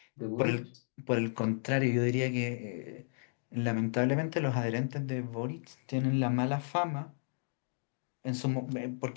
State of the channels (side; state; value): right; silent; digital silence